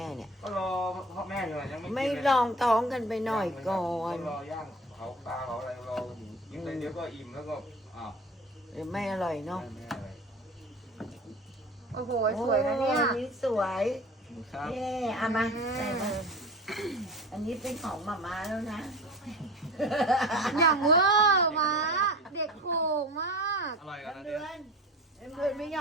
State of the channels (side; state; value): both; normal; correlation 0.37